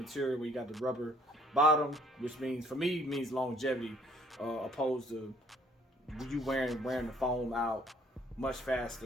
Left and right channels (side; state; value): both; normal; correlation 0.61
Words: where you got the rubber bottom, which means for me means longevity, opposed to you wearing the foam out much